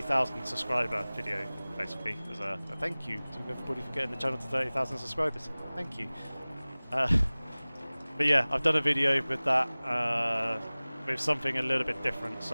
subscriber video, basically. As a thank you to everybody for getting the channel to 30,000 subscribers. Thank you. But yeah, I've done a video with that, with something a little bit different.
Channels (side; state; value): both; inverted; correlation -0.99